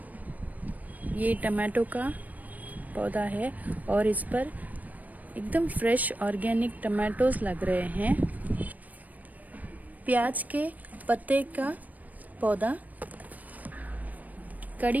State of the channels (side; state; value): left; late; 0.078 ms